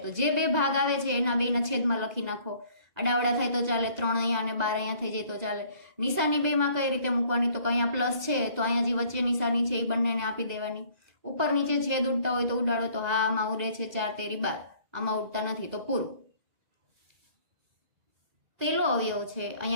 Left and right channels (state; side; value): late; left; 2.0 ms